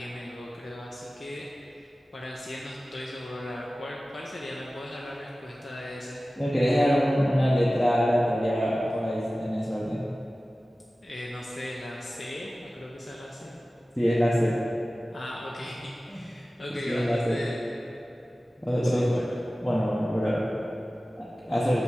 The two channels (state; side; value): normal; both; correlation 0.96